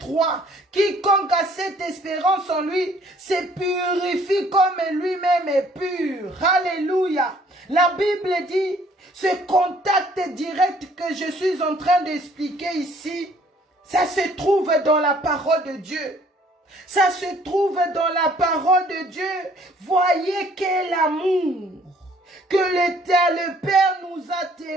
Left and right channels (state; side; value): normal; both; correlation 0.59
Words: Quiconque a cette espérance en lui se purifie comme lui-même est pur. Alléluia. La Bible dit, ce contact direct que je suis en train d'expliquer ici, ça se trouve dans la parole de Dieu. Ça se trouve dans la parole de Dieu. Voyez quel amour que le Père nous a